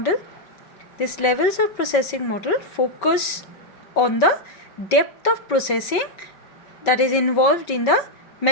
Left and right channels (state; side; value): late; right; 5.3 ms